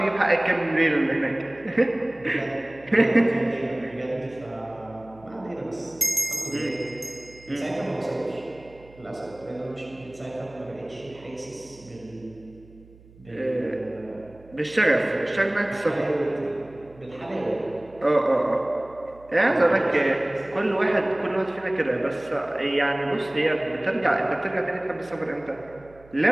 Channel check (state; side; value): noise; right; hum, 24 dB below the sound